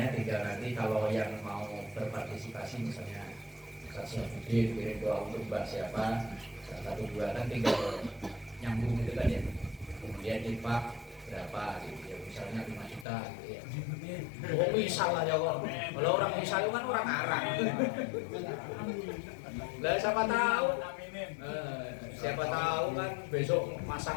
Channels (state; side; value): drops out; right; at 13.1 s